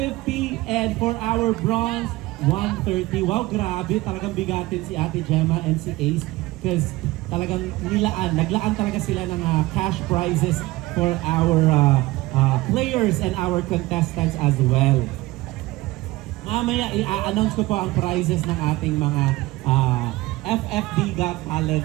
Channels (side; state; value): left; quieter; 19.4 dB